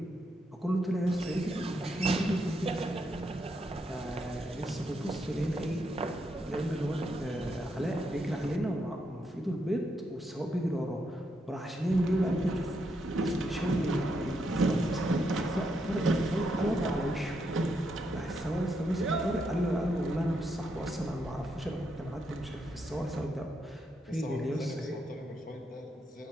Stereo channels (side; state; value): both; normal; correlation 0.80